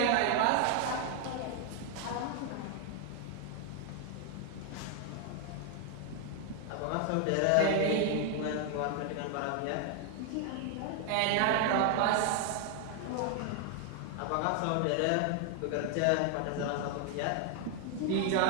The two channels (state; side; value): different; both; correlation 0.00